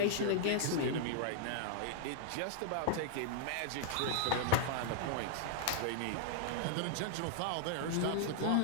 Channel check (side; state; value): both; different; correlation -0.01